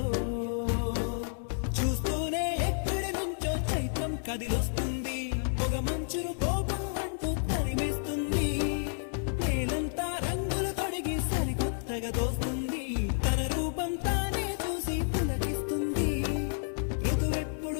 చూస్తూనే ఎక్కడి నుంచో చైత్రం కదిలొస్తుంది పొగ మంచును కోపం అంటూ తరిమేస్తుంది నేలంతా రంగులు తొడిగి సరికొత్తగా దోస్తుంది తన రూపం తానే చూసి పులకిస్తుంది ఋతువెప్పుడు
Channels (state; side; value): silent; right; 56 dB below the other